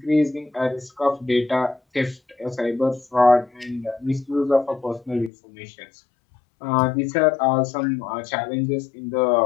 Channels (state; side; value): drops out; right; at 5.3 s